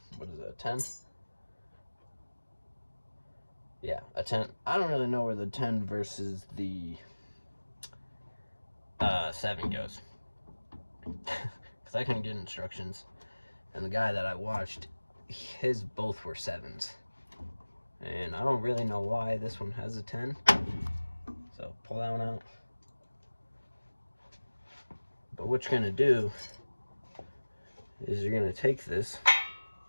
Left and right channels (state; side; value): inverted; both; correlation -1.00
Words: what is it, a 10? Yeah, a 10. I don't really know where the 10 versus the 7 goes. Because I couldn't get instructions. And the guy that I watched, his both were 7s. And I don't really know why this one has a 10. So pull that one out. But what you're going to do is you're going to take this